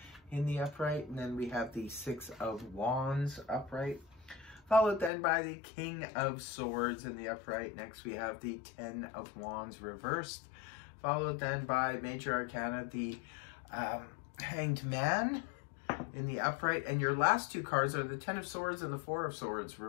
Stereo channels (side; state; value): right; drops out; at 5.1 s